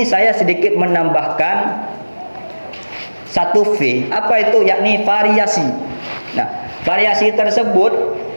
saya sedikit menambahkan 1 V. Apa itu? Yakni variasi. Nah, variasi tersebut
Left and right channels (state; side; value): inverted; both; correlation -1.00